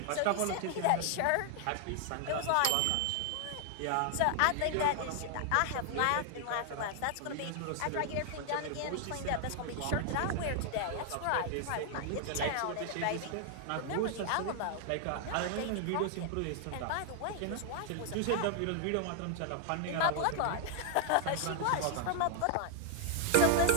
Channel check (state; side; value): different; both; correlation 0.00